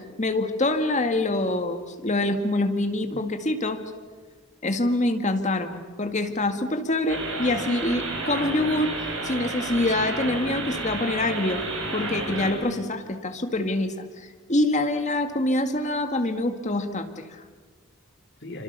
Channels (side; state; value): both; normal; correlation 0.43